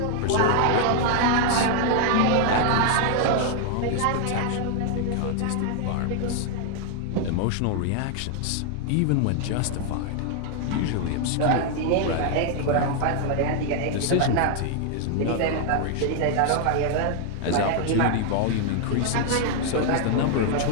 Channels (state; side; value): different; both; correlation 0.00